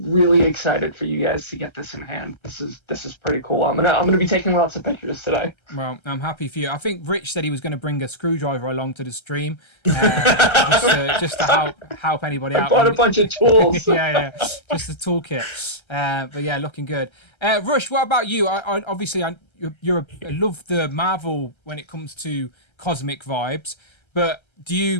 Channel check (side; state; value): right; late; 1.3 ms